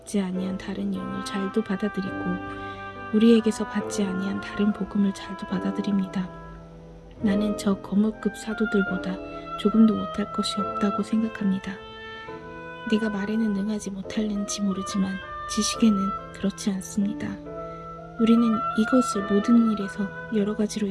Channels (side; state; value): both; identical; correlation 1.00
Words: 아니한 다른 영을 잘도 받아들이고 우리에게서 받지 아니한 다른 복음을 잘도 받아들입니다. 나는 저 거물급 사도들보다 조금도 못할 것이 없다고 생각합니다. 내가 말에는 능하지 못할는지 모르지만 지식에는 그렇지 않습니다. 우리는 이것을 모든 일에서 여러 가지로